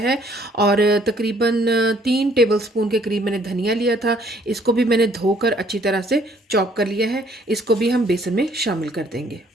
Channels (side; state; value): both; normal; correlation 0.63